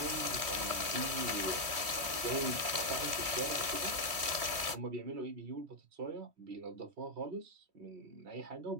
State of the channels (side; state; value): left; late; 3.1 ms